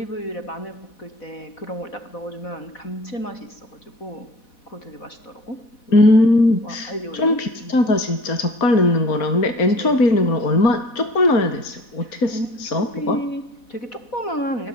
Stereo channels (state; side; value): late; right; 4.1 ms